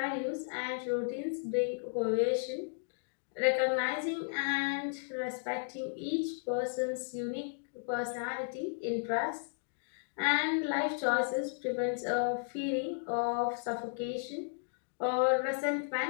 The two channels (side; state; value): right; silent; digital silence